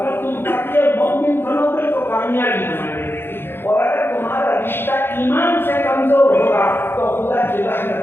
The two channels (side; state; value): right; late; 0.11 ms